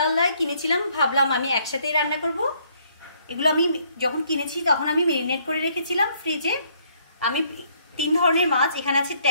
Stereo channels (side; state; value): both; inverted; correlation -0.67